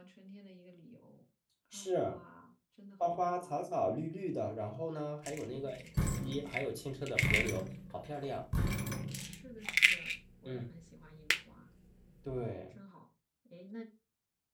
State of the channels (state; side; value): identical; both; correlation 1.00